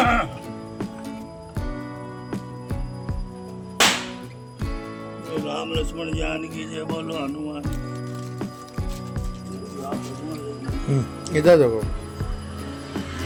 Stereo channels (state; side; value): identical; both; correlation 1.00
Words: राम लक्ष्मण जानकी जय बोलो हनुमान। इधर देखो।